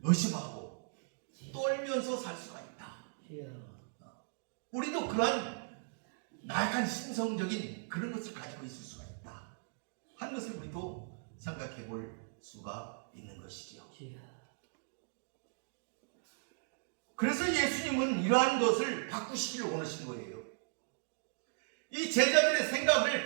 의심하고 떨면서 살 수가 있다. 우리도 그러한 나약한 심성적인 그런 것을 가지고 있을 수가 있다 하는 것을 우리도 생각해 볼 수가 있는 것이죠. 그래서 예수님은 이러한 것을 바꾸시기를 원하신 거예요. 이 제자들의 생각을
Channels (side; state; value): left; silent; digital silence